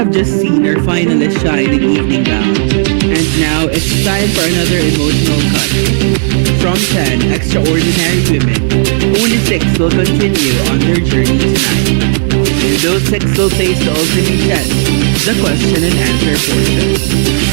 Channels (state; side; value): silent; left; digital silence